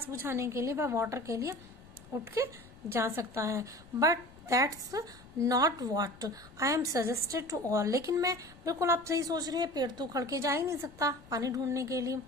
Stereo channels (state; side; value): noise; left; rumble, 22 dB below the sound